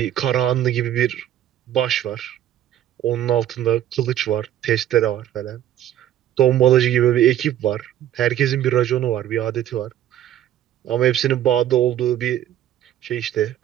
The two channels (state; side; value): quieter; left; 11.7 dB